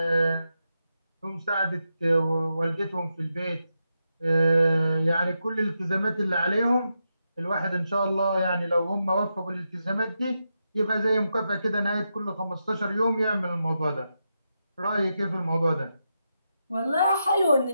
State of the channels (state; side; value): inverted; both; correlation -0.86